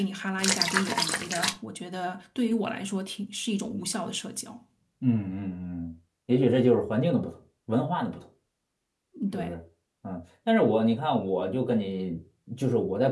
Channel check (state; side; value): identical; both; correlation 1.00